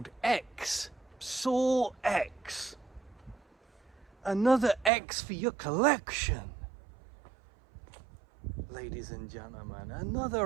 X, Saw X. Another X for your collection. Ladies and gentlemen,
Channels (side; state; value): left; drops out; at 4.9 s